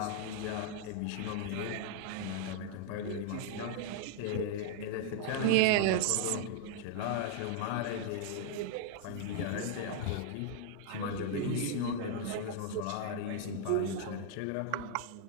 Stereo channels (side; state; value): both; different; correlation 0.00